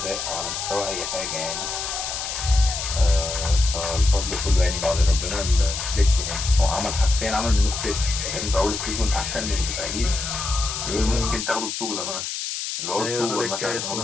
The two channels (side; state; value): left; noise; hiss, 4 dB below the sound